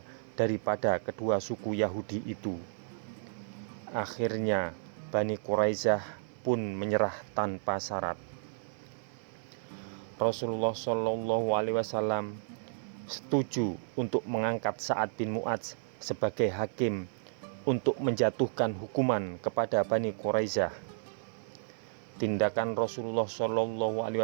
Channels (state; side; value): silent; left; 56 dB below the other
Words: daripada kedua suku Yahudi itu. Akhirnya Bani Quraisyah pun menyerah tanpa syarat. Rasulullah SAW setuju untuk mengangkat Sa'ad bin Mu'adz sebagai hakim untuk menjatuhkan hukuman kepada Bani Quraisyah. Tindakan Rasulullah